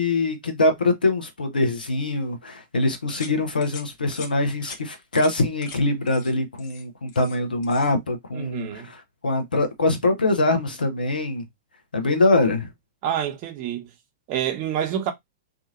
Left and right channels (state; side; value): inverted; both; correlation -0.60